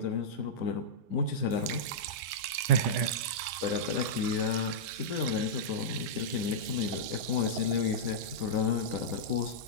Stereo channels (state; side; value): late; left; 10 ms